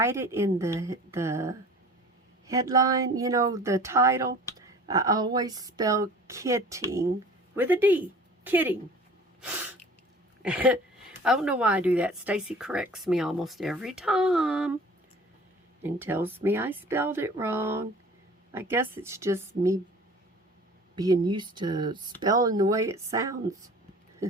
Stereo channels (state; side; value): normal; both; correlation 0.45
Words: it in the headline, you know, the title, I always spell kitting with a D. Kitting. I don't know why I do that. Stacy corrects me almost every time and tells me I spelled it wrong. I guess it's just me being used to spelling the way it sounds.